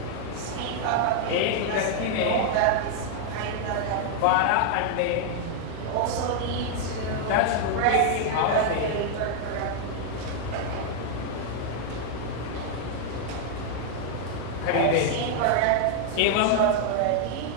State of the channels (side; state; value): both; different; correlation 0.00